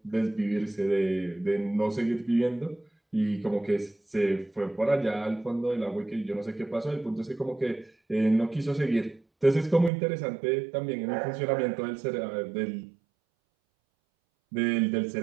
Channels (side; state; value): left; drops out; at 9.9 s